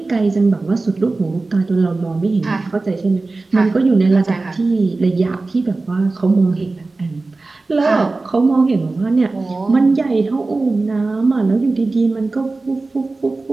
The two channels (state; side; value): quieter; left; 3.4 dB